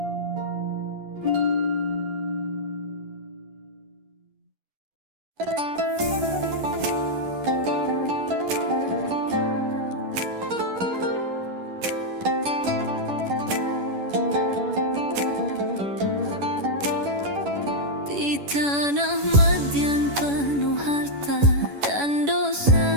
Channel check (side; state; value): left; late; 10 ms